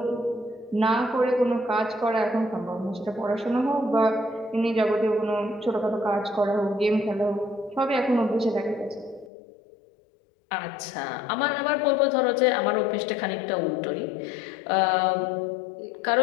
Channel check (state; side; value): drops out; right; at 9.3 s